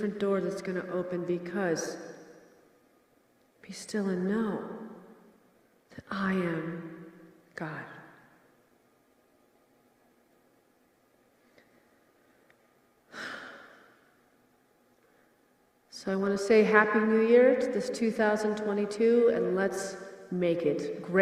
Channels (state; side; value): identical; both; correlation 1.00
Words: door that's going to open because be still and know that I am God. So I want to say Happy New Year to this 2022, and let's make it